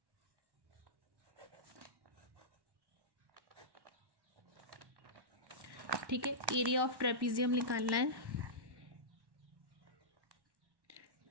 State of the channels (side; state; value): left; late; 1.1 ms